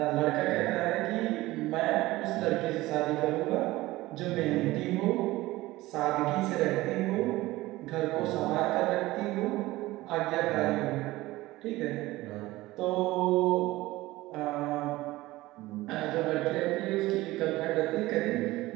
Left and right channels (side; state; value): left; quieter; 18.4 dB